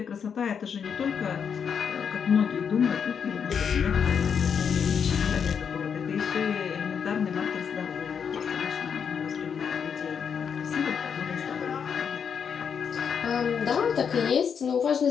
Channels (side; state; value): right; quieter; 7.0 dB